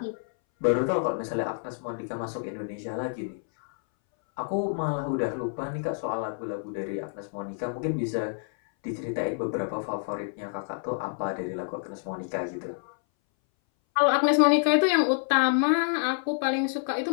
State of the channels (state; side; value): silent; right; 59 dB below the other